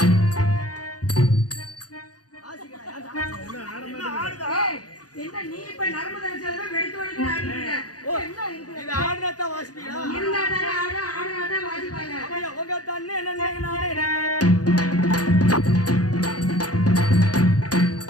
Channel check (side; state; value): right; late; 0.68 ms